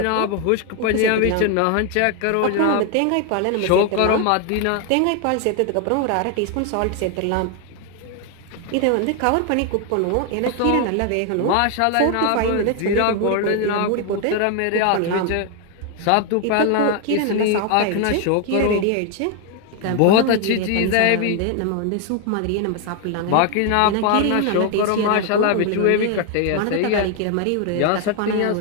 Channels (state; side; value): different; both; correlation 0.01